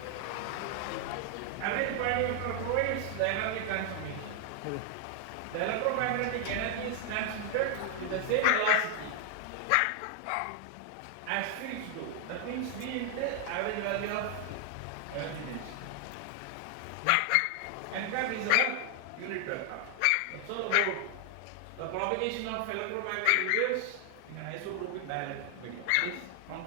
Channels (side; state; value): both; different; correlation 0.00